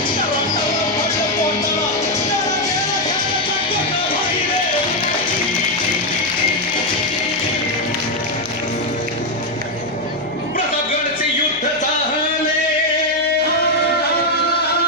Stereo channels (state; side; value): noise; left; hum, 27 dB below the sound